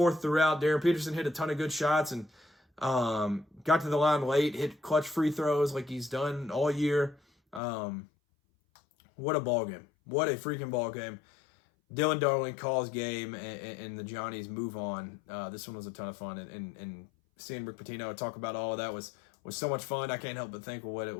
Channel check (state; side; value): drops out; right; at 7.6 s